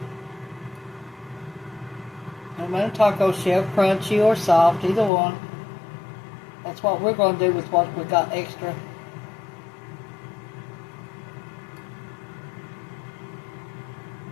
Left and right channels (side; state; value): right; drops out; at 5.1 s